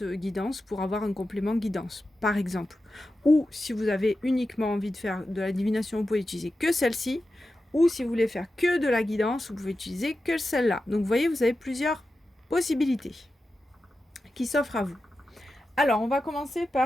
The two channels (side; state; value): both; normal; correlation 0.92